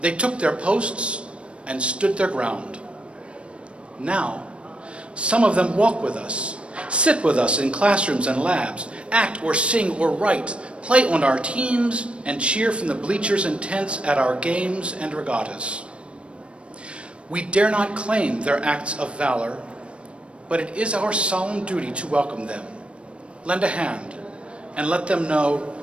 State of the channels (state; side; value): late; left; 0.059 ms